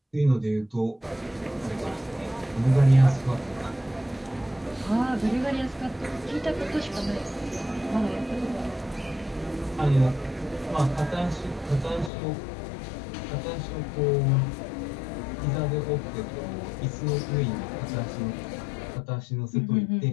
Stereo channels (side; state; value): right; drops out; at 12.1 s